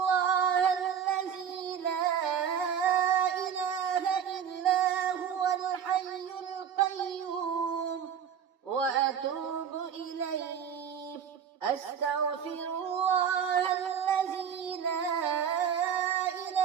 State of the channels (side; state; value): left; quieter; 8.0 dB